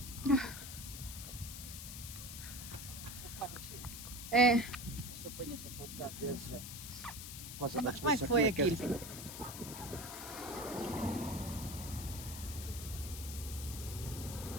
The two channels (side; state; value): left; noise; hiss, 9 dB below the sound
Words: É. Como é que foi aquilo?